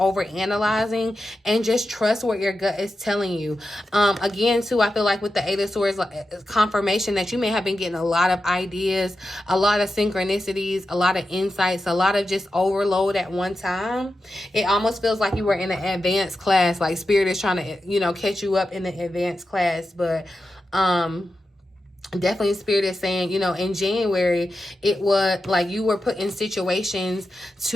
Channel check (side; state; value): both; normal; correlation 0.90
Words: and just trust what your gut is telling you. Again, too, I feel like with the Eight of Swords, like, confirmation that you may have been getting a lot of ideas, a lot of synchronicities, a lot of insights, a lot of just overload at one time. It almost feels like you were in an advanced class, like Spirit is trying to, you know, catch you up in the advanced class. But definitely Spirit is saying, you know, in January, it was like you were put in situations